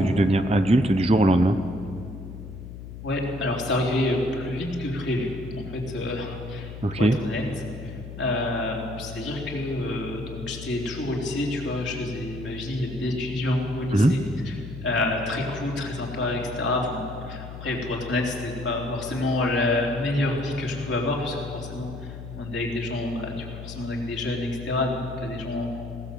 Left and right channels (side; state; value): left; noise; hum, 11 dB below the sound